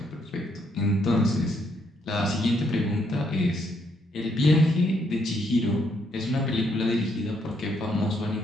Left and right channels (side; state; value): both; normal; correlation 0.73